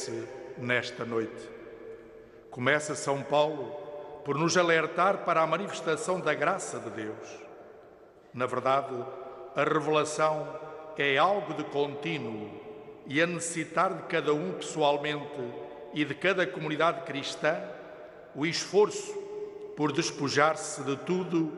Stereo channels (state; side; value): identical; both; correlation 1.00